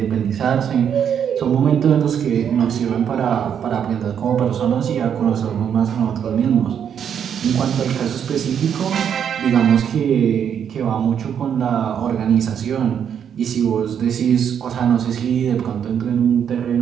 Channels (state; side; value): quieter; left; 8.3 dB